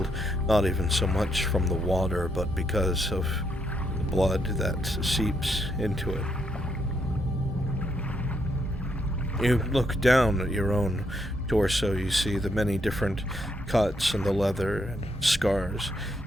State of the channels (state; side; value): normal; both; correlation 0.77